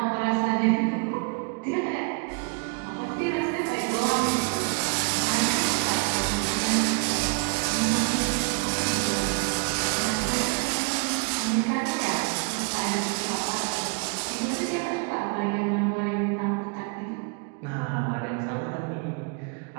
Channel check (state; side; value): quieter; left; 33.6 dB